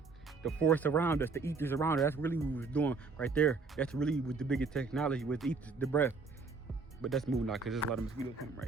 The force around us, the ethers around us, that's really what we was doing right there. That's really what the biggest technology with ethers, the breath. But that's moving out because there's a lot of mosquitoes coming right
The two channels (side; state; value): left; quieter; 4.3 dB